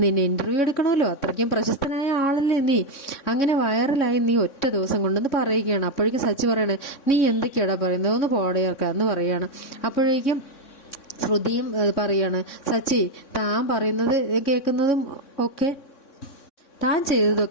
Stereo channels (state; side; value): late; right; 3.6 ms